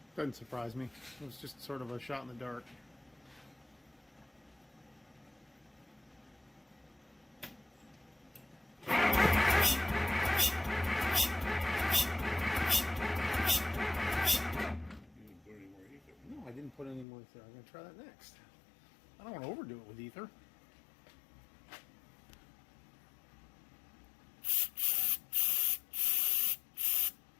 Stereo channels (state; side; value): drops out; right; at 17.1 s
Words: Doesn't surprise me. It was just sort of a shot in the dark. No, I didn't put any more ether. I'm going to try that next. I don't want to overdo it with ether.